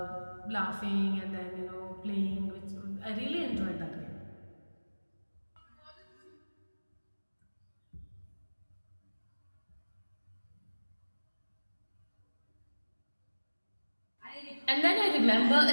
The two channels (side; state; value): both; inverted; correlation -1.00